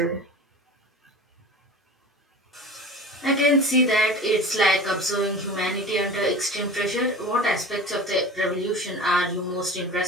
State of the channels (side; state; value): both; normal; correlation 0.37